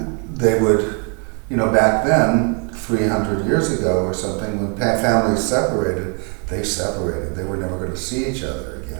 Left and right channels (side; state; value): left; quieter; 38.1 dB